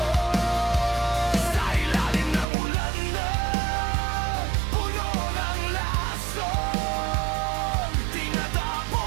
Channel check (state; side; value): drops out; left; at 2.5 s